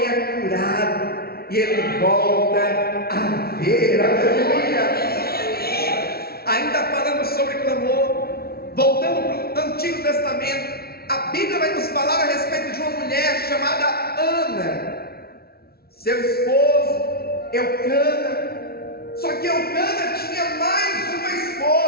é curado e ele volta a ver, aleluia. Ainda falando sobre clamor, voltando para o Antigo Testamento, a Bíblia vai nos falar a respeito de uma mulher chamada Ana. Seu esposo Eucana, só que Eucana tinha mais uma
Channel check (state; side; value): late; right; 0.45 ms